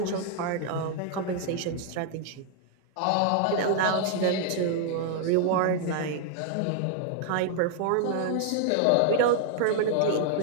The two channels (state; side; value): different; both; correlation 0.00